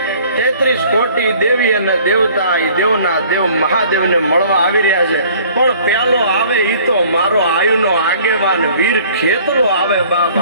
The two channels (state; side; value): inverted; both; correlation -0.53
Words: 33 કોટી દેવી અને દેવતા એ દેવના દેવ મહાદેવને મળવા આવી રહ્યા છે. પણ પેલો આવે ઈ તો મારો આયુનો આગેવાન વીર ખેતરો આવે. બાપ